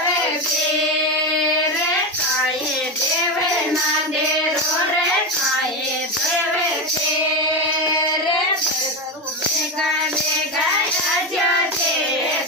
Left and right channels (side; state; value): both; normal; correlation 0.15